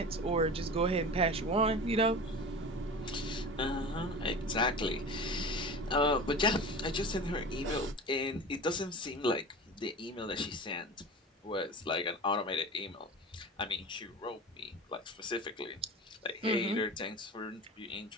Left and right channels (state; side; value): normal; both; correlation 0.33